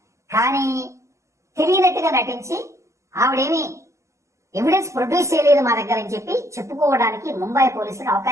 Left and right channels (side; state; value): left; late; 0.14 ms